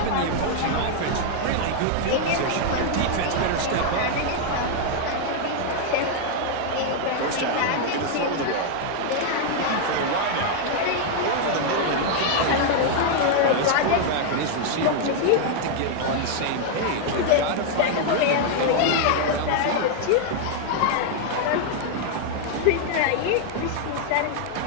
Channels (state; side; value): different; both; correlation 0.00